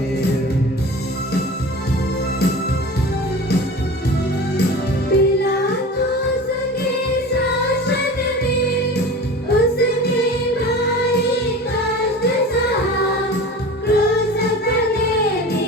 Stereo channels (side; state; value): both; normal; correlation 0.35